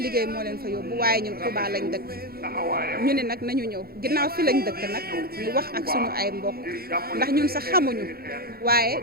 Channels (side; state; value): left; late; 0.44 ms